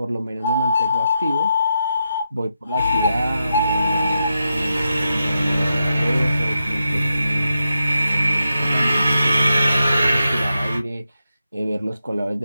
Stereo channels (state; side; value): inverted; both; correlation -0.86